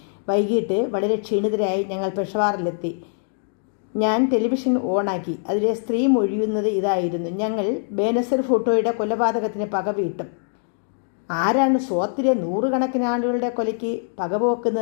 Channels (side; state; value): right; silent; digital silence